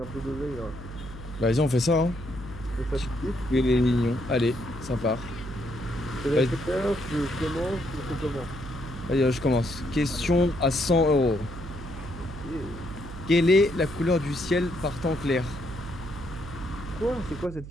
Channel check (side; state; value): right; noise; hum, 12 dB below the sound